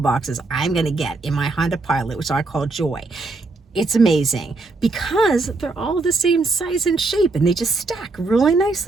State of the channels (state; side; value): quieter; left; 3.5 dB